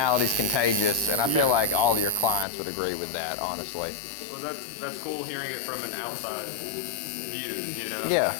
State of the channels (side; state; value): right; drops out; at 2.5 s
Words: contagious, and I feel like all of your clients would agree with that, honestly. Well, that's cool hearing it from an outside view, you know? Yeah.